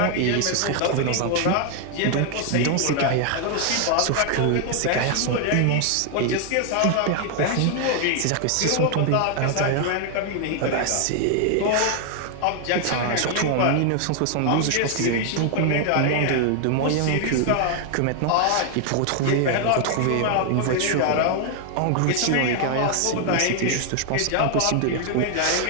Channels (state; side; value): different; both; correlation 0.00